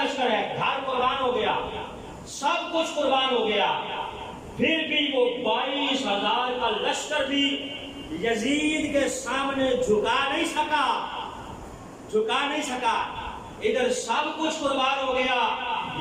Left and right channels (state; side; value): identical; both; correlation 1.00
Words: لشکر ہے، گھر قربان ہو گیا، سب کچھ قربان ہو گیا، پھر بھی وہ 22,000 کا لشکر بھی یزید کے سامنے جھکا نہیں سکا، جھکا نہیں سکا۔ ادھر سب کچھ قربان ہو گیا،